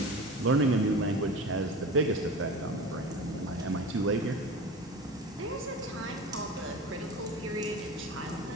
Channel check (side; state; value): both; normal; correlation 0.33